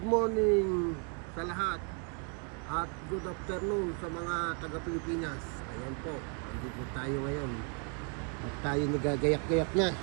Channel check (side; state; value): left; quieter; 39.5 dB